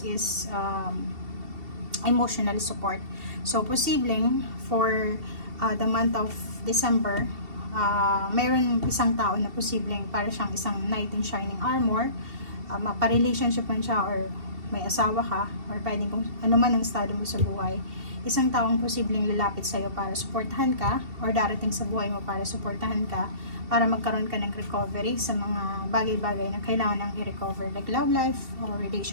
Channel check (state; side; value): late; left; 2.7 ms